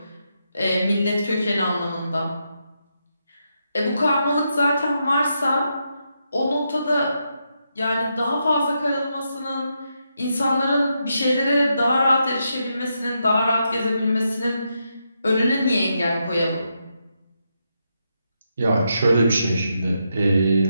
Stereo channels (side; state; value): both; inverted; correlation -0.82